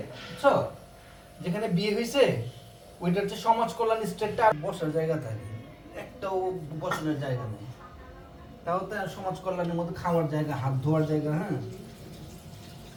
বুঝছো যেখানে বিয়ে হইছে ওইটা হচ্ছে সমাজ কল্যাণ স্টেটটা বসার জায়গা থাকে একটাও বসানোর জায়গা নেই তাও তো সমাজ কল্যাণের মধ্যে খাওয়ার জায়গা হাত ধোয়ার জায়গা হ্যাঁ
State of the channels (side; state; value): both; identical; correlation 1.00